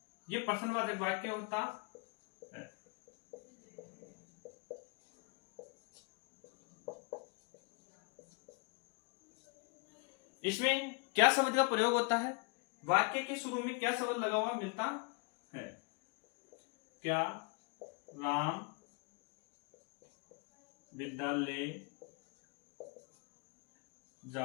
ये प्रश्नवाचक वाक्य होता है। इसमें क्या शब्द का प्रयोग होता है? वाक्य के शुरू में क्या शब्द लगा हुआ मिलता है? क्या राम विद्यालय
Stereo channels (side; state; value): right; quieter; 32.4 dB